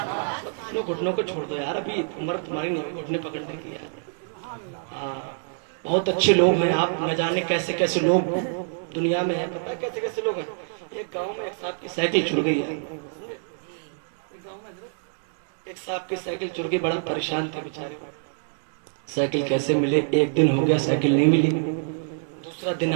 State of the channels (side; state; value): left; silent; digital silence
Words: گھٹنوں کو چھوڑ دو یار, ابھی عمر تمہاری نہیں گھٹنے پکڑنے کی یار. ہاں بہت اچھے لوگ ہیں آپ, نہ جانے کیسے کیسے لوگ دنیا میں ہیں. پتہ ہے کیسے کیسے لوگ ہیں. ایک گاؤں میں ایک صاحب کی سائیکل چھوڑ گئی ہے, ایک صاحب کی سائیکل چور گئی, بڑا پریشان تھے بیچارے. سائیکل کیسے ملے, ایک دن ہو گیا سائیکل نہیں ملی, دوسرا دن